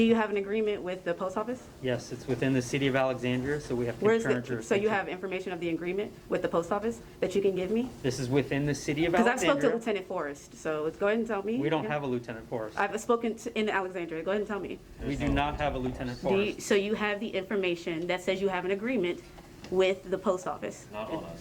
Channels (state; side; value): identical; both; correlation 1.00